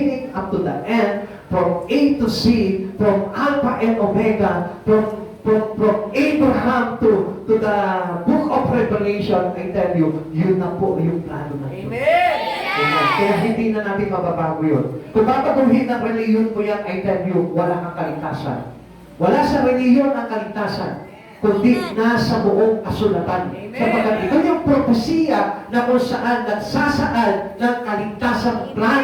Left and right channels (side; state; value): both; identical; correlation 1.00